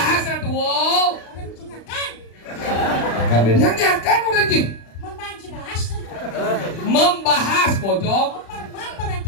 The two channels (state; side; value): late; right; 35 ms